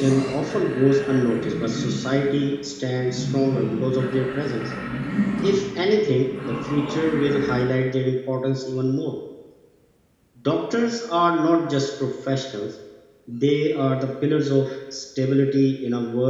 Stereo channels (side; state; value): both; identical; correlation 1.00